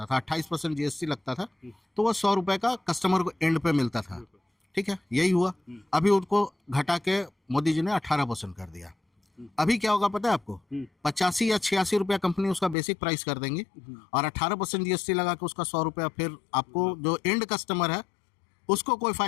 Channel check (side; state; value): right; drops out; at 12.8 s